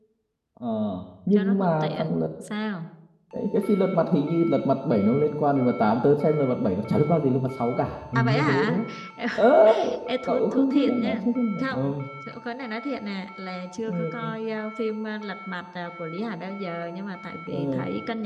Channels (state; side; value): identical; both; correlation 1.00